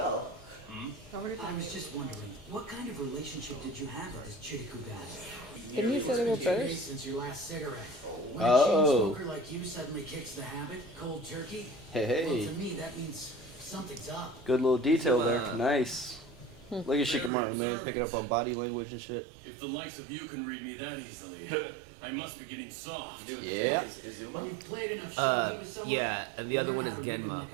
I was just wondering, what kind of relationship did you have with this Chiriku guy? Didn't you say they were brothers? Since your last cigarette. When a Oh. chain smoker like you suddenly kicks the habit, cold turkey. Hey, Well, hey. to me, that means something's up. Good little detail there. Nice. Look at Shikamaru, man, picking up on body language and shit. If the likes of you can read me that easily, I must be getting soft. Yeah. When you've played enough shogi with someone, Yeah, and the other you one learn is how to read 'em Genma. like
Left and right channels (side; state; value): left; drops out; at 17.3 s